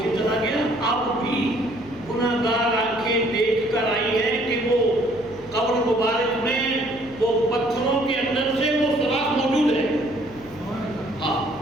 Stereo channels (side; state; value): left; noise; hum, 22 dB below the sound